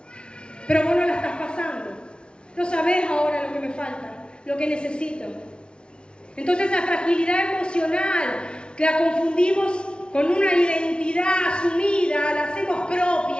Pero vos no la estás pasando. No sabés ahora lo que me falta, lo que necesito. Entonces esa fragilidad emocional que la confundimos con una identidad asumida, la hacemos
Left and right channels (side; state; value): right; late; 0.056 ms